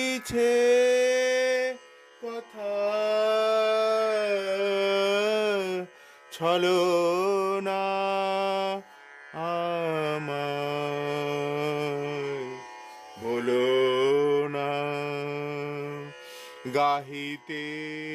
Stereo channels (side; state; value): both; identical; correlation 1.00